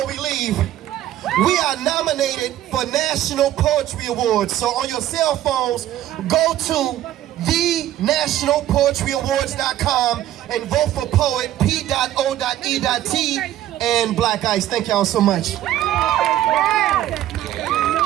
we leave. We are nominated for National Poetry Awards. So on your cell phones, go to thenationalpoetryawards.com and vote for P.O.E.T, P.O.E.T, and Black Ice. Thank y'all so much. 1,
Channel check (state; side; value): quieter; left; 13.0 dB